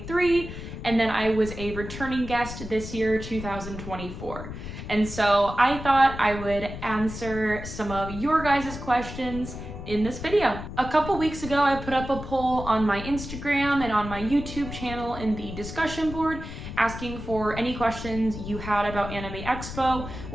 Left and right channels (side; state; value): left; noise; rumble, 9 dB below the sound